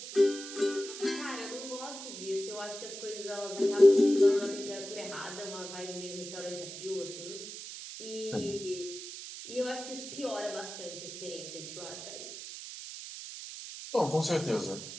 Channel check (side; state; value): right; noise; hiss, 10 dB below the sound